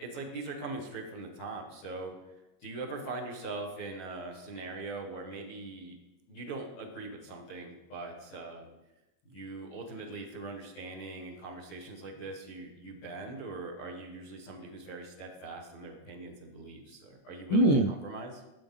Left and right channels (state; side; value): late; right; 22 ms